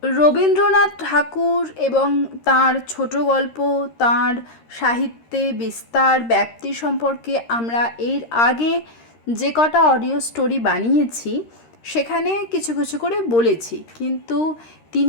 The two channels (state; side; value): late; right; 13 ms